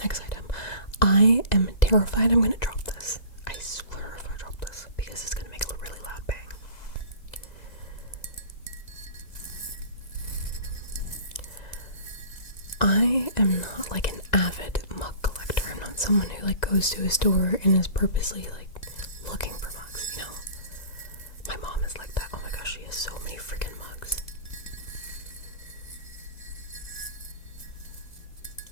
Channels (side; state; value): right; late; 1.9 ms